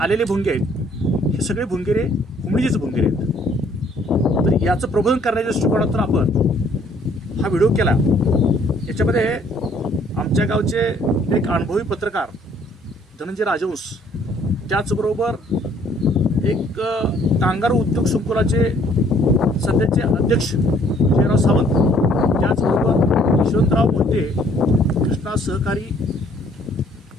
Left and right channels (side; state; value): both; normal; correlation 0.62